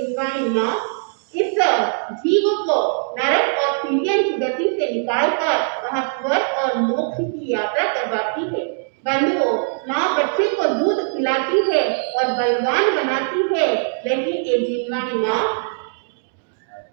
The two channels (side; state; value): left; silent; digital silence